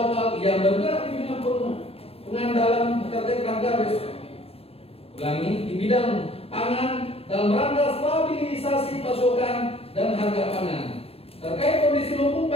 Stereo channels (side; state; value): right; late; 0.28 ms